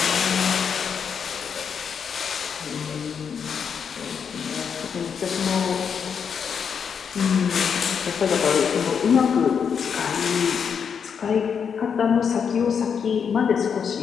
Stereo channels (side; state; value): right; quieter; 6.9 dB